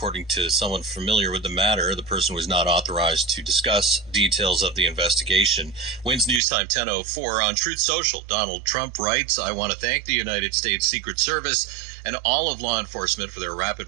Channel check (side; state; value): left; drops out; at 6.4 s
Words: to someone familiar with the matter. The person was not authorized to discuss details of the investigation. WINS News Time 10:04 on Truth Social. Donald Trump writes, "I want to thank the United States Secret Service and all of law enforcement for their